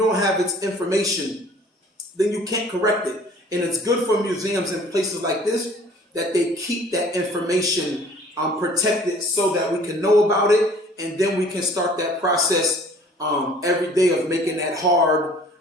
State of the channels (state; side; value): normal; both; correlation 0.52